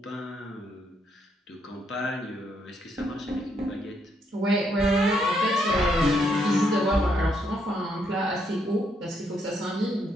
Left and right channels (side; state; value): both; normal; correlation 0.74